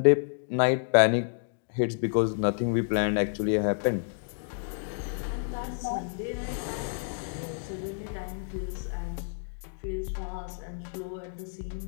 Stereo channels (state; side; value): silent; right; digital silence